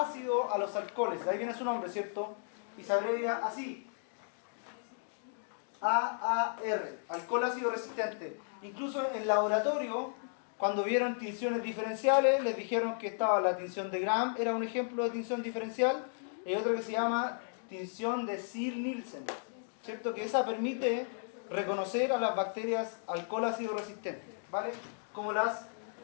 a los alcoholes. De ahí viene su nombre, ¿cierto? Y se abrevia así. AAR, alcohol ácido resistente. Incluso en laboratorio, cuando vieron tinciones diferenciales, les dijeron que estaba la tinción de Gram, era un ejemplo de tinción diferencial, y otro que se llama tinción de Ziehl-Neelsen, ¿cierto? Que esa permite reconocer a las bacterias alcohol ácido resistentes, ¿vale? Como las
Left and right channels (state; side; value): silent; right; digital silence